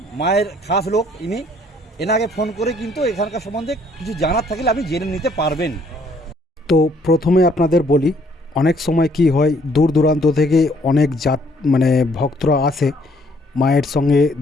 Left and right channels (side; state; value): both; normal; correlation 0.64